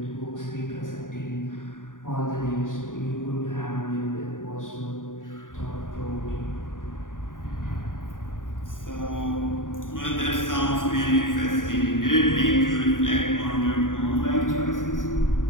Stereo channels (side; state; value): right; late; 0.89 ms